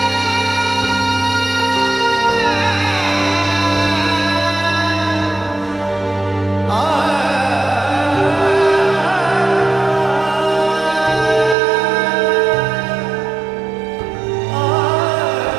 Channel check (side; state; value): left; drops out; at 11.6 s